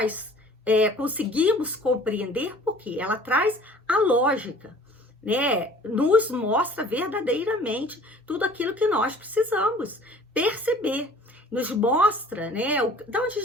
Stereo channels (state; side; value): normal; both; correlation 0.50